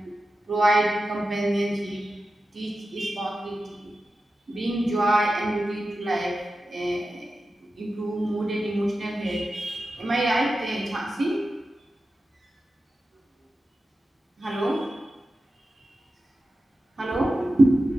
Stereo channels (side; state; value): both; normal; correlation 0.92